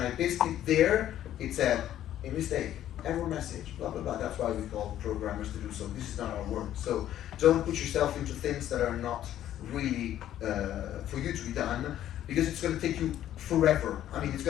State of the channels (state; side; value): quieter; right; 11.9 dB